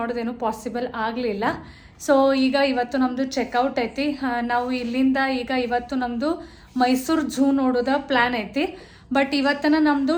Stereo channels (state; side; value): identical; both; correlation 1.00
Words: ಪಾಸಿಬಲ್ ಆಗಲಿಲ್ಲ. ಸೊ ಈಗ ಇವತ್ತು ನಮ್ಮದು ಚೆಕ್ಔಟ್ ಐತಿ. ನಾವು ಇಲ್ಲಿಂದ ಈಗ ಇವತ್ತು ನಮ್ಮದು ಮೈಸೂರು ಝೂ ನೋಡೋದ ಪ್ಲ್ಯಾನ್ ಐತಿ. ಬಟ್ ಇವತ್ತನ ನಮ್ಮದು